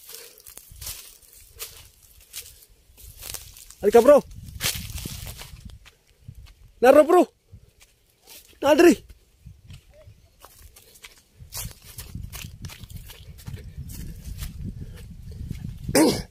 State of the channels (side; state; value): both; identical; correlation 1.00